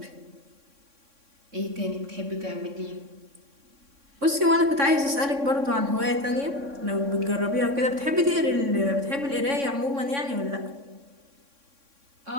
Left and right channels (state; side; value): late; left; 3.6 ms